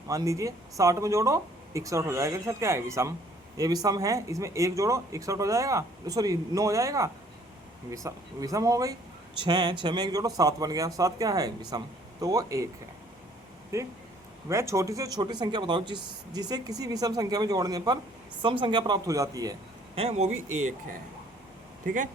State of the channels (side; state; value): both; normal; correlation 0.59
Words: मान लीजिए 60 में जोड़ो 61 हो जाएगा, सर क्या है विषम, ये विषम है। इसमें 1 जोड़ो 61 हो जाएगा, सॉरी 9 हो जाएगा, विषम हो गई। 6 में 1 जोड़ो 7 बन गया, 7 क्या है विषम, तो वो 1 है, ठीक। वह छोटी से छोटी संख्या बताओ जिसे किसी विषम संख्या में जोड़ने पर सम संख्या प्राप्त हो जाती है, वो भी 1 है, ठीक है।